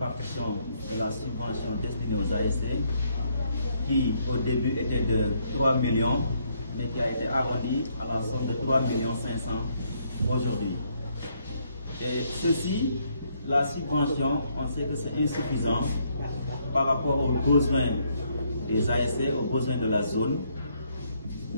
de la subvention destinée aux ASC, qui au début était de 3 millions, mais qui a été arrondi à la somme de 3 500 000 aujourd'hui. Et ceci, la subvention, on sait que c'est insuffisant par rapport aux besoins des ASC, aux besoins de la zone,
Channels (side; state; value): both; inverted; correlation -0.72